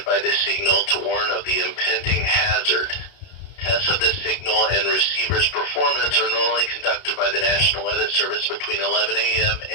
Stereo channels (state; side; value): late; right; 32 ms